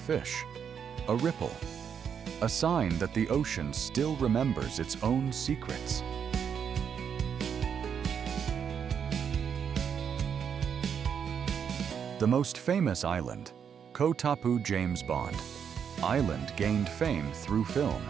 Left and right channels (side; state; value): left; quieter; 7.5 dB